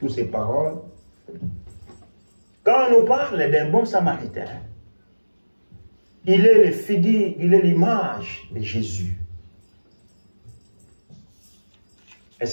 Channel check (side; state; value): both; inverted; correlation -1.00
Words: ces paroles. Quand on nous parle d'un bon samaritain, il est le figure, il est l'image de Jésus.